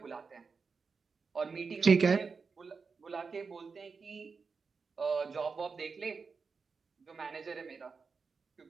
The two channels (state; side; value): quieter; left; 5.0 dB